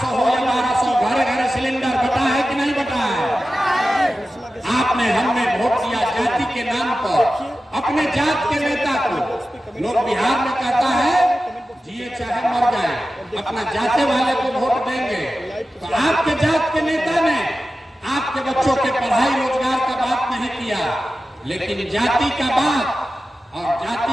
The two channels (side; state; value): both; normal; correlation 0.94